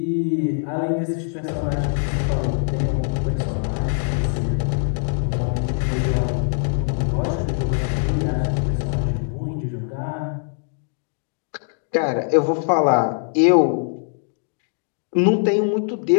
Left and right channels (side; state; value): right; silent; 64 dB below the other